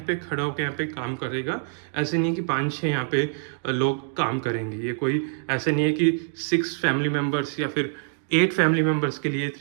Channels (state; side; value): silent; left; digital silence